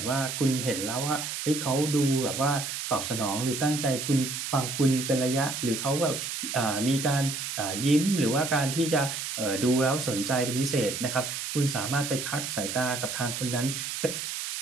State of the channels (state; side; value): noise; right; hiss, 5 dB below the sound